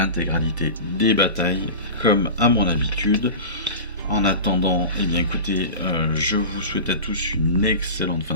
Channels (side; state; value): both; inverted; correlation -0.30